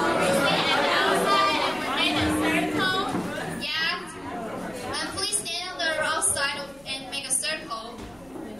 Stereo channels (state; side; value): noise; left; hum, 28 dB below the sound